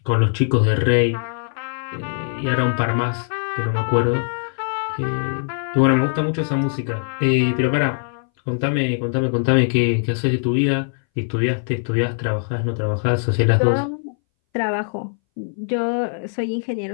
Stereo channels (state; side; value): silent; right; 62 dB below the other